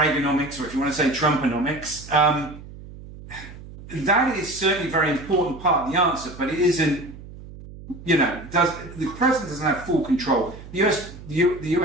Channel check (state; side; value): noise; right; hum, 16 dB below the sound